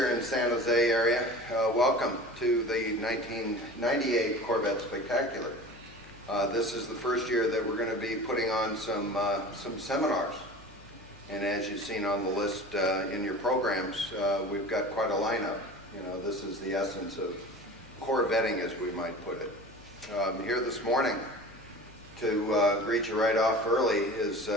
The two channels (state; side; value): noise; left; hum, 23 dB below the sound